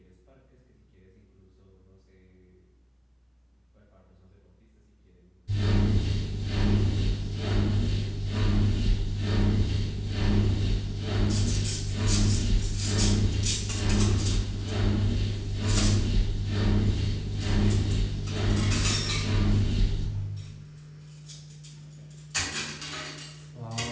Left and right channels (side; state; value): both; identical; correlation 1.00